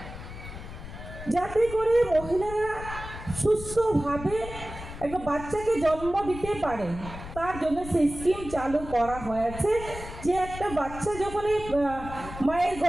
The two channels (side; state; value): left; noise; rumble, 11 dB below the sound